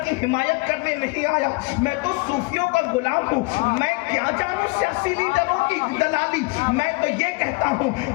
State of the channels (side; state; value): right; quieter; 27.0 dB